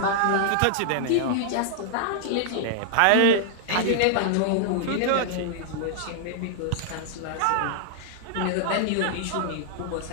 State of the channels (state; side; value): different; both; correlation 0.00